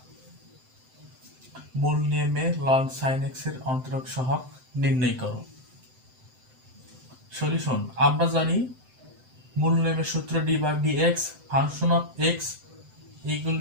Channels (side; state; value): left; late; 7.8 ms